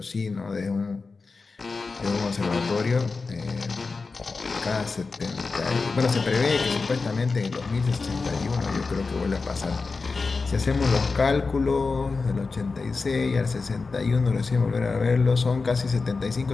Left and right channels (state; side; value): quieter; right; 4.2 dB